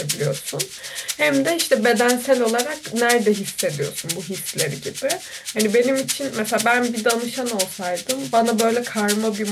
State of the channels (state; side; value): identical; both; correlation 1.00